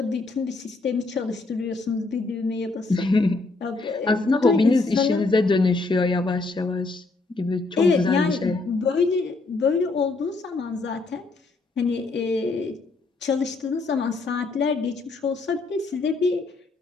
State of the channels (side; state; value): right; quieter; 3.6 dB